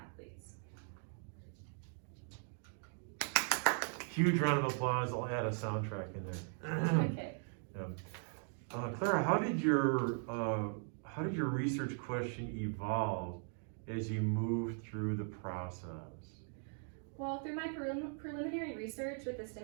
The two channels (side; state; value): left; silent; 52 dB below the other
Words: Huge round of applause. I'll add a soundtrack in there. Okay. Yeah. Clara, how did your research question evolve as you moved through the process? Well, through my preliminary research with the